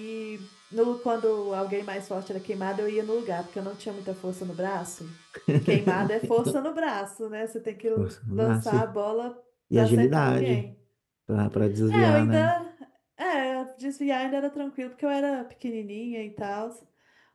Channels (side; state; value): both; identical; correlation 1.00